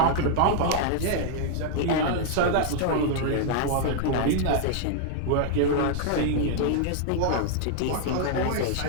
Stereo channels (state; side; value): different; both; correlation 0.00